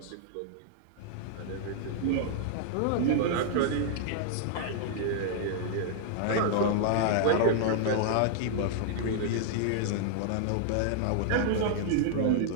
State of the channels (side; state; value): both; different; correlation -0.01